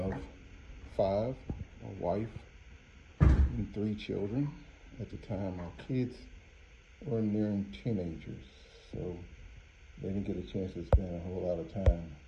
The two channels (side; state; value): both; identical; correlation 1.00